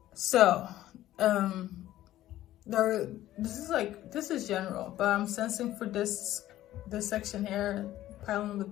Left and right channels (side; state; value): right; quieter; 14.1 dB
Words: So, this is general, but I'm sensing for this section here, pile number